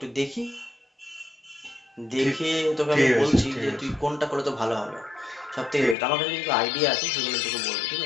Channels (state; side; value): drops out; right; at 6.0 s